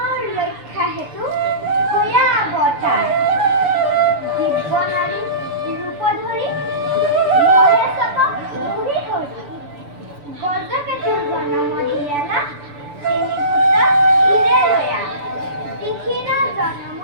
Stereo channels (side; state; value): left; late; 6.9 ms